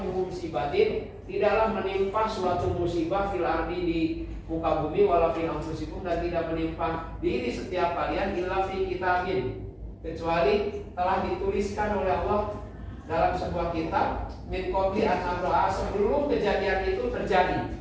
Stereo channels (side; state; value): both; identical; correlation 1.00